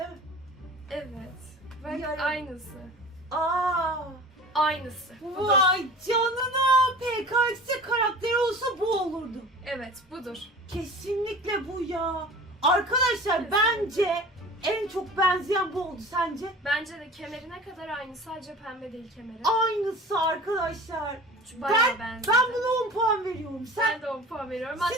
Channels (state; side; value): normal; both; correlation 0.39